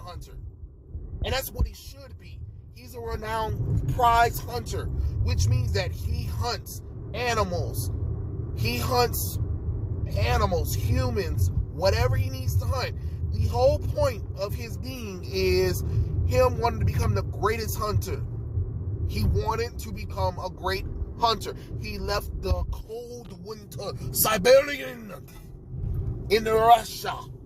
And that's what he should be. He's a renowned prize hunter, which means that he hunts animals. He hunts humans, whatever he needs to hunt. The whole point of his being is wanted to become the greatest hunter. He wanted to become a great hunter. He left the cold winter Siberian in Russia.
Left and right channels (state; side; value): identical; both; correlation 1.00